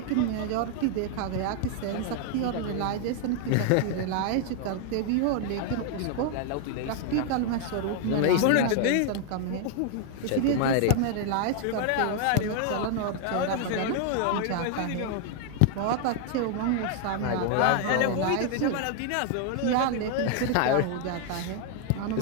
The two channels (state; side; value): different; both; correlation 0.00